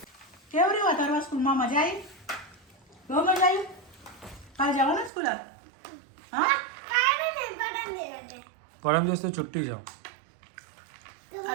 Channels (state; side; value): drops out; left; at 5.1 s